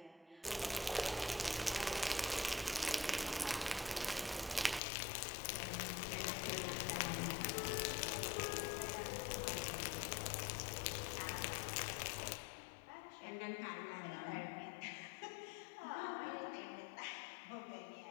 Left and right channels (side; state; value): right; drops out; at 4.8 s